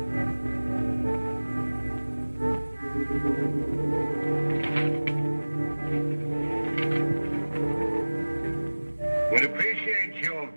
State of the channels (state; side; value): inverted; both; correlation -1.00